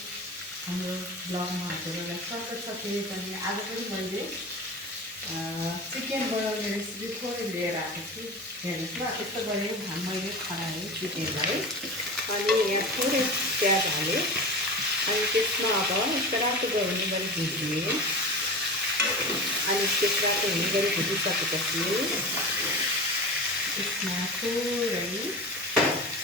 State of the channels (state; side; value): normal; both; correlation 0.30